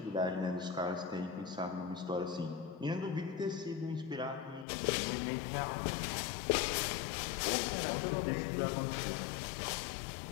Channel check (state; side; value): drops out; right; at 4.7 s